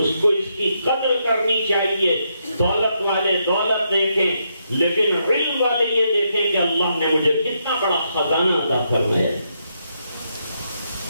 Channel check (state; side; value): inverted; both; correlation -0.79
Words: کو اس کی قدر کرنی چاہیے. دولت والے دولت دیکھیں لیکن علم والے یہ دیکھیں کہ اللہ نے مجھے کتنا بڑا خزانہ عطا فرمایا ہے.